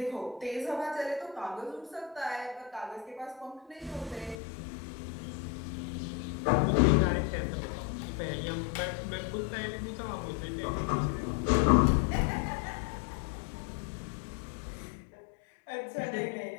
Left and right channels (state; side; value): drops out; right; at 4.4 s